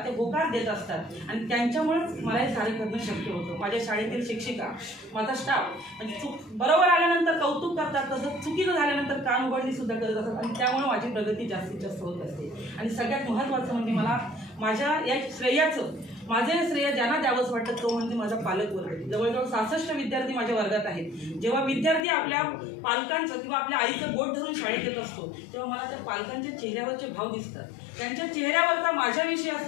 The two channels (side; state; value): right; drops out; at 22.1 s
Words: होकार देत असतात आणि त्यांच्यामुळेच मला हे सारे करणं शक्य होतं. माझ्या शाळेतील शिक्षिका, माझा स्टाफ म्हणजे बरोबर आल्यानंतर कौतुक करतात, तसंच चुकीचं झाल्यानंतर कान उघडणी सुद्धा करत असतात आणि त्यामुळे माझी प्रगती जास्तीत जास्त होत असते. आणि सगळ्यात महत्त्वाचं म्हणजे मला माझ्या या श्रेयाचं माझे श्रेय ज्यांना द्यावंच वाटतं तो म्हणजे माझा पालकवर्ग. जवळजवळ 66 विद्यार्थी माझ्या वर्गात आहेत. जेव्हा विद्यार्थी आपल्या पालकांचं किंवा आपल्या आईचं बोट धरून शाळेत येत असतो तेव्हा मला त्या पालकांच्या चेहऱ्यावरचे भाव दिसतात, त्यांच्या चेहऱ्यावरचा माझ्याविषयी